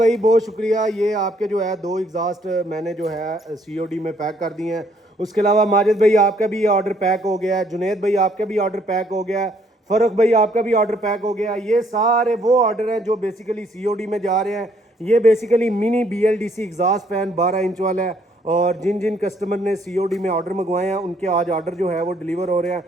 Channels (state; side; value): normal; both; correlation 0.66